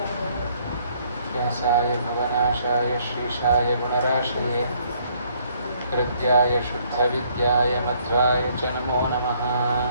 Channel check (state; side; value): inverted; both; correlation -0.66